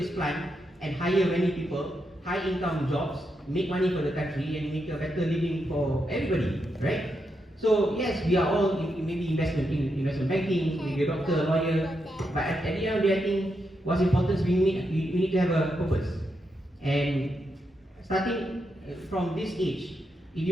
plant and hire many people, high income jobs, make money for the country, and make a better living for everybody, right? So yes, we are all maybe investment banking, maybe a doctor, a lawyer, but at the end of the day, I think what's important is we need to have a purpose. And starting from this age, if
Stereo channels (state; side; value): normal; both; correlation 0.84